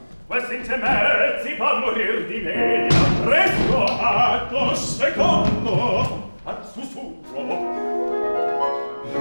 questi intermezzi fa morir di media presto atto secondo al sussurro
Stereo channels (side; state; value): both; inverted; correlation -1.00